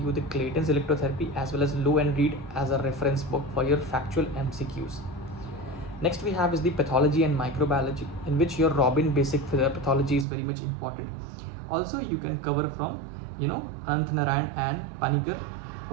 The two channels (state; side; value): drops out; left; at 10.2 s